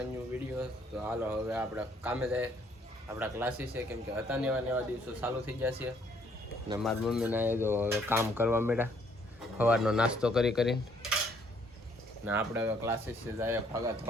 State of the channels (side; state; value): both; normal; correlation 0.65